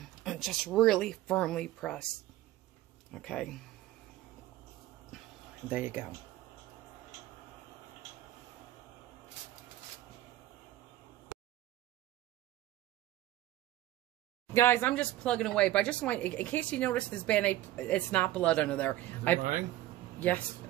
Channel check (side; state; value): left; quieter; 14.9 dB